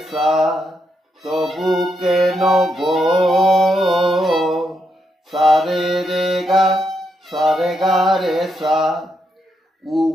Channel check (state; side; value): normal; both; correlation 0.80